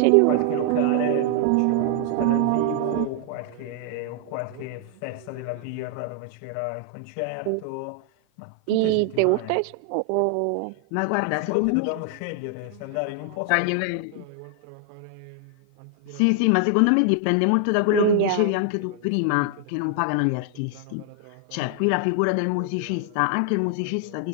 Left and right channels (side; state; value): both; different; correlation 0.00